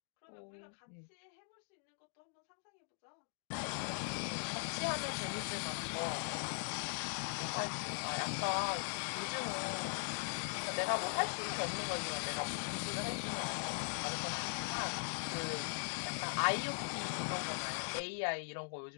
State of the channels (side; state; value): right; silent; digital silence